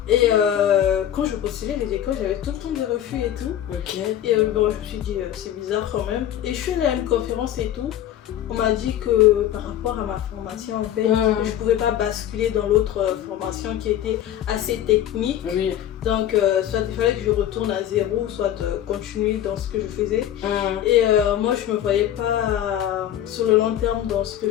Et quand je postulais les écoles, j'avais tout le temps des refus et tout. Et bon, je me suis dit c'est bizarre quand même. Et je suis allée à une conférence et tout. On m'a dit que par rapport à ma formation en fait, je pouvais pas basculer dans l'autre formation qui était assez technique. Donc soit il fallait que je retourne à zéro, soit continuer dans ce que je faisais. Et moi je me voyais pas sur le long terme dans ce que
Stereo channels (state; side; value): quieter; right; 11.3 dB